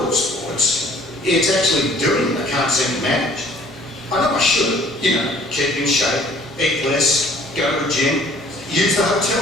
of sports. It's actually doing it I can't seem to manage. I know I should, keep in shape, eat less, go to the gym, use the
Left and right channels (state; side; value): normal; both; correlation 0.55